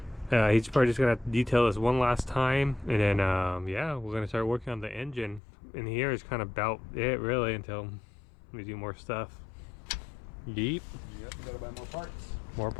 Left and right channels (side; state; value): right; drops out; at 5.4 s